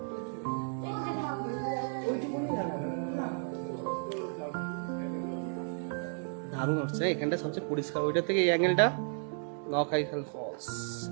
দারুণ উঠছে এখানটা, সবচেয়ে পরিষ্কার। ওইটা থেকে এই অ্যাঙ্গেলটা নখালিখাই ফলস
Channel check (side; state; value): left; silent; 56 dB below the other